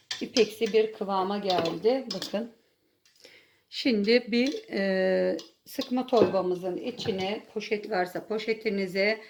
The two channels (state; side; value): identical; both; correlation 1.00